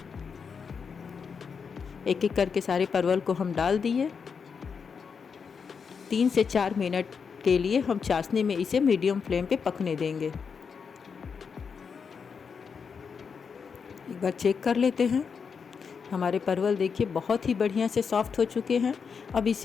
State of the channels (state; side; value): quieter; right; 6.0 dB